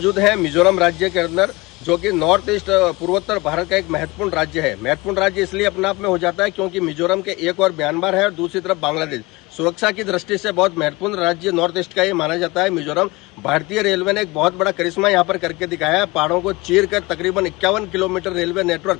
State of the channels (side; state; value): right; quieter; 23.2 dB